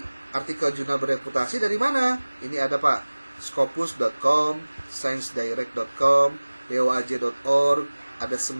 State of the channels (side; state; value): both; inverted; correlation -1.00